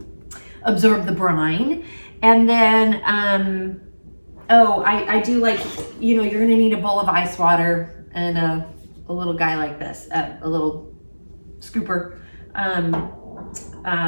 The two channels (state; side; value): inverted; both; correlation -1.00